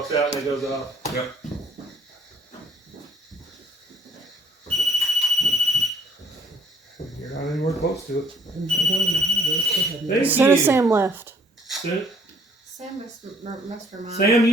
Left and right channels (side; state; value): both; normal; correlation 0.61